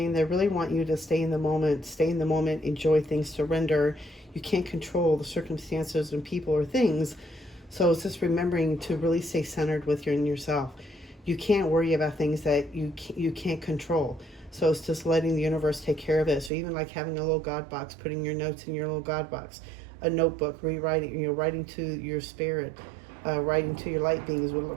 They really want you to stay in the moment, enjoy things, surrender. You can't control the circumstances and people or things. So it's just remembering to really stay centered with yourself. You can't worry about things that you can't control. So it's just letting the universe take care of it. So even like having a little God box, putting your notes in your little God box, a notebook, rewriting, writing to your spirit, writing to your light beings,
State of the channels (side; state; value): left; drops out; at 16.5 s